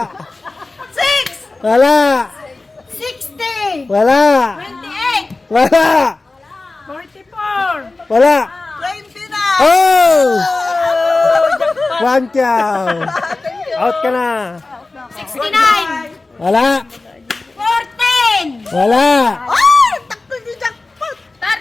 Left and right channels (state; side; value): quieter; right; 3.3 dB